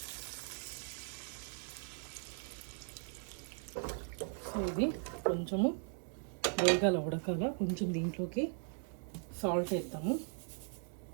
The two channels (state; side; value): silent; left; 52 dB below the other